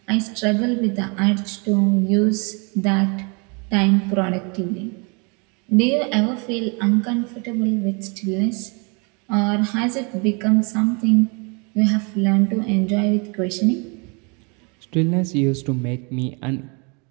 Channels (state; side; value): quieter; left; 32.7 dB